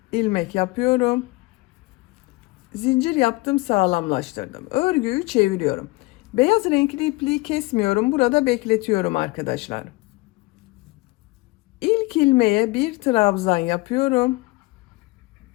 ilmek yapıyorum. Zincir yaptım, sağlamlaştırdım. Örgüyü çeviriyorum. Beyaz renkli ipliği kesmiyorum. Burada bekletiyorum arkadaşlar. İlk ilmeğe bir trabzan yapıyorum.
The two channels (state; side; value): quieter; right; 23.0 dB